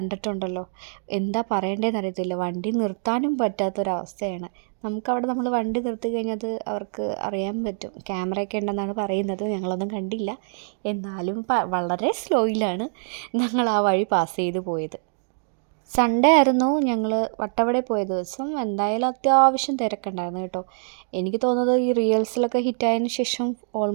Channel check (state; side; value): silent; left; digital silence